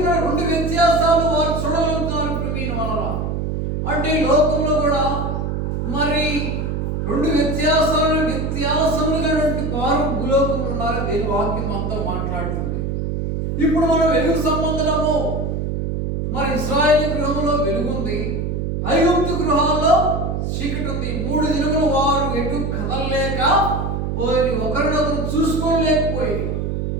2 వ్యత్యాసాలు వారు చూడగలుగుతున్నారు ప్రవీణ వల్ల. అంటే లోకంలో కూడా మరి 2 వ్యత్యాసములుగా వారు భూలోకంలో ఉన్నారు. దేని వాక్యం అంతా మాట్లాడుతుంది. ఇప్పుడు మనం వెలుగు సంబంధము మరి ఇశ్రాయేలు గృహంలో వెలుగుంది, ఐగుప్తు గృహాల్లో చీకటి ఉంది. 3 దినములు వారు ఎటు కదలలేక పోయి ఒకరినొకరు చూసుకోలేకపోయి.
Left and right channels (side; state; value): right; noise; hum, 2 dB below the sound